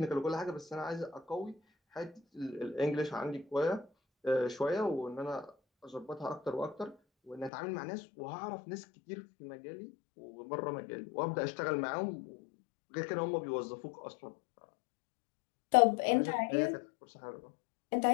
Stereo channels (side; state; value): right; drops out; at 7.5 s